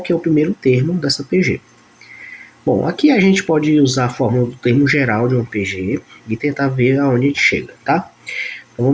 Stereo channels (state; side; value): identical; both; correlation 1.00